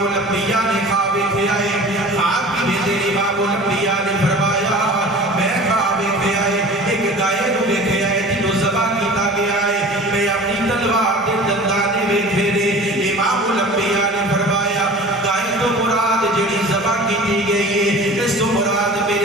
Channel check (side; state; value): both; normal; correlation 0.41